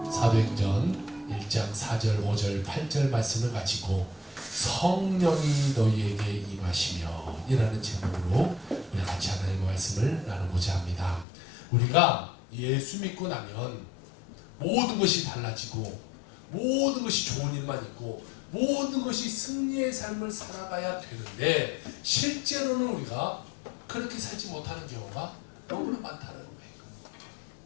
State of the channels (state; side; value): drops out; right; at 11.2 s